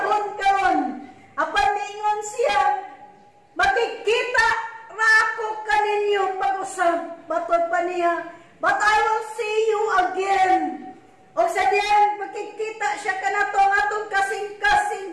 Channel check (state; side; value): identical; both; correlation 1.00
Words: karon. Apan niingon siya, makikita ra ako kaninyo pag-usab. Batod pa niya, but I will see you again. O sa diyan, makikita siya kanato ang atong kasing-kasing